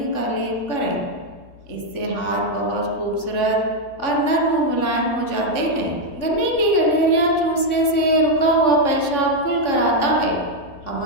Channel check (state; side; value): late; right; 3.7 ms